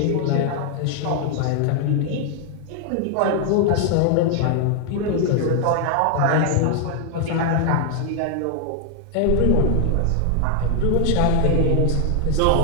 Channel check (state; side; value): different; both; correlation 0.00